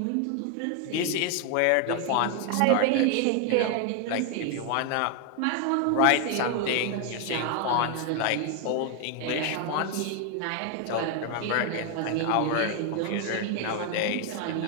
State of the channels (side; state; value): both; different; correlation 0.01